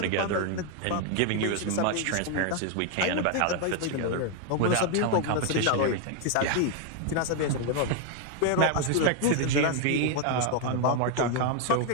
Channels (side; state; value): both; different; correlation 0.01